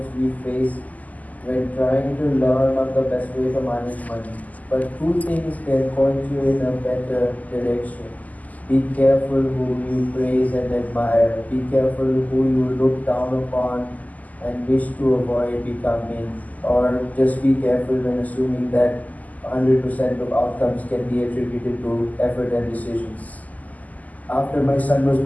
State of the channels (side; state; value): right; late; 0.078 ms